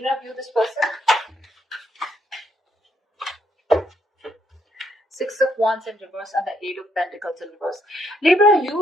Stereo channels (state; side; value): normal; both; correlation 0.73